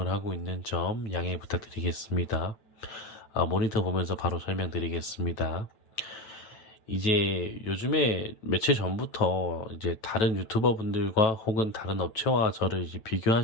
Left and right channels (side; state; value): right; late; 9.1 ms